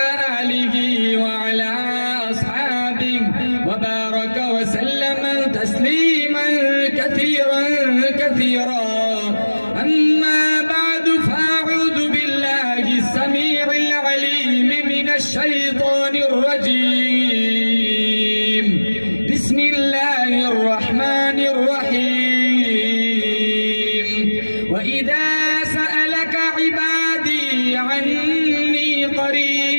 آله وعلى أصحابه وبارك وسلم تسليما كثيرا كثيرا أما بعد فأعوذ بالله السميع العليم من الشيطان الرجيم بسم الله الرحمن الرحيم وإذا سألك عبادي عني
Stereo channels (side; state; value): both; inverted; correlation -1.00